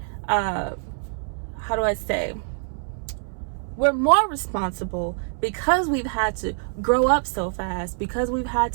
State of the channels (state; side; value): silent; left; 62 dB below the other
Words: we're more responsible because we've had to grow up so fast, because we've had